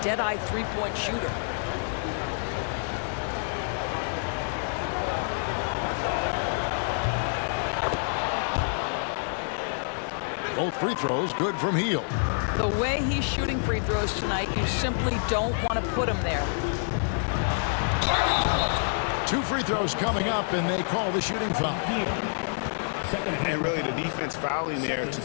dead-eye three-point shooter. Both free throws good from Hield. The way he's shooting free throws tonight, you simply don't want to put him there. 2 free throws coming up, and they call the shooting foul. And really the defense fouling there to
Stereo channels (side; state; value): right; silent; 60 dB below the other